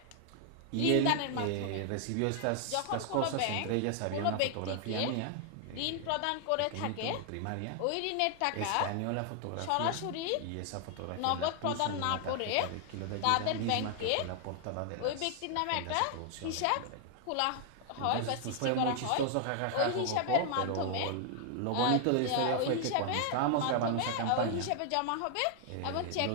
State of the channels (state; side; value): different; both; correlation 0.00